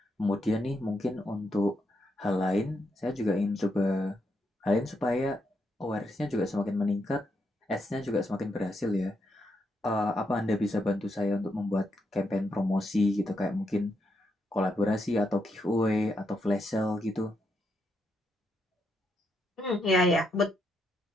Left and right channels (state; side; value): normal; both; correlation 0.80